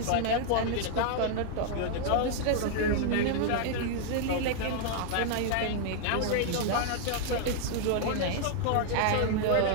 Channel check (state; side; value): different; both; correlation -0.01